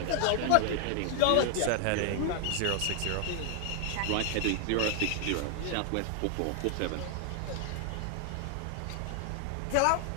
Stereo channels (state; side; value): different; both; correlation 0.00